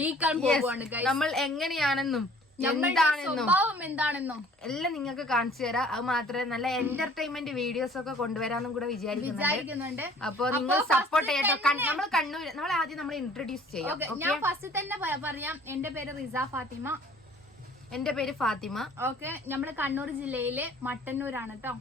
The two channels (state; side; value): normal; both; correlation 0.53